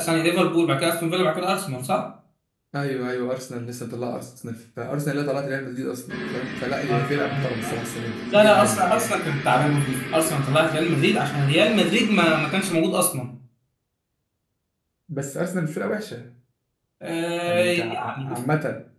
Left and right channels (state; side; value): identical; both; correlation 1.00